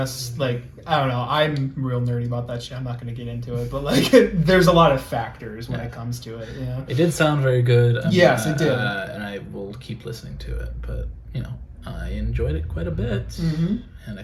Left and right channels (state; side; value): identical; both; correlation 1.00